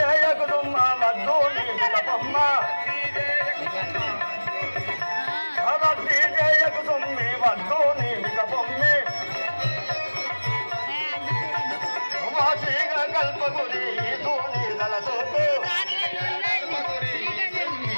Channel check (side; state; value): both; inverted; correlation -1.00